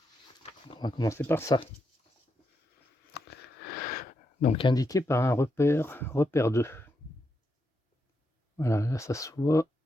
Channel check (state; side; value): normal; both; correlation 0.83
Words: On va commencer par ça. Donc indiqué par un repère 2. Voilà, là ça se voit.